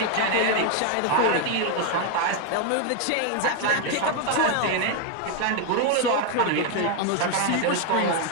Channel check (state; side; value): different; both; correlation 0.01